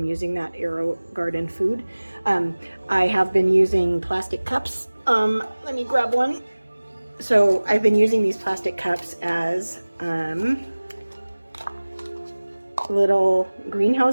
using that Aerogarden food. I have been using plastic cups. Let me grab one. So I've been using these plastic cups as little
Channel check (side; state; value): both; inverted; correlation -1.00